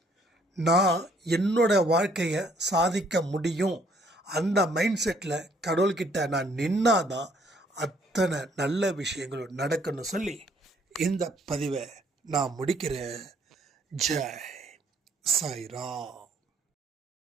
நான் என்னோட வாழ்க்கையை சாதிக்க முடியும், அந்த மைண்ட் செட்டில் கடவுள்கிட்ட நான் நின்னாதான் அத்தனை நல்ல விஷயங்களும் நடக்குன்னு சொல்லி இந்த பதிவை நான் முடிக்கிறேன். ஜெய் சாய்ராம்.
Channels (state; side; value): normal; both; correlation 0.64